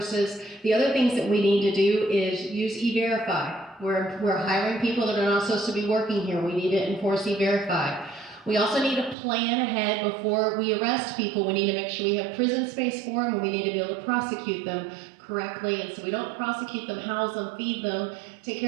The other things that we need to do is use E-Verify. We're hiring people that are not supposed to be working here. We need to enforce E-Verify. We also need to plan ahead before we arrest people. We need to make sure we have prison space for them, and we need to be able to prosecute them correctly. And so we don't prosecute them, house them, feed them, take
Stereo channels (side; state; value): left; drops out; at 9.2 s